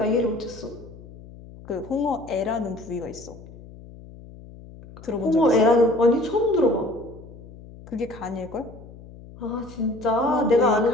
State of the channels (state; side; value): noise; left; hum, 18 dB below the sound